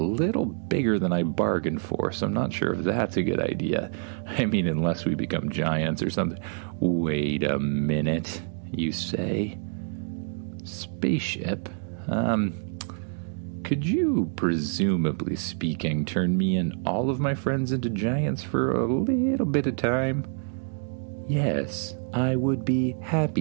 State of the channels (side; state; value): left; silent; 60 dB below the other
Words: bigger than I bargained for, so I'm not sure if that's a good idea. I mean, unless we become giants or something." "Wait a minute," you say. "Spaceship, could you, presumably speaking, turn me and all of my friends into giants for a little bit of time?" "Yes, I would be